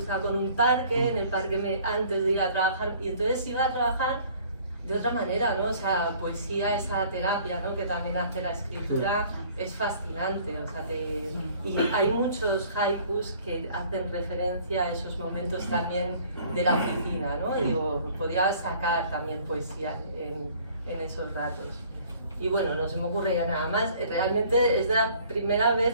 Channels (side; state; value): both; inverted; correlation -0.54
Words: con un parque, en el parque antes de ir a trabajar, y entonces iba a trabajar de otra manera, ¿no? O sea, poesía, esa terapia, ¿no? Que también hace la escritura, es fascinante, o sea, y hay muchos haikus que hacen referencia a esos momentos también de la oficina, ¿no? Digo, podría sacar también poesía en esos ratos. Y bueno, no se me ocurre ya nada más. Realmente es la primera